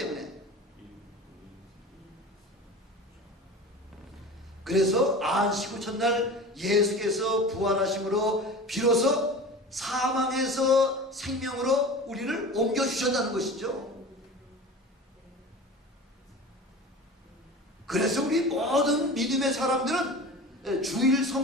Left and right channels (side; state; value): both; normal; correlation 0.35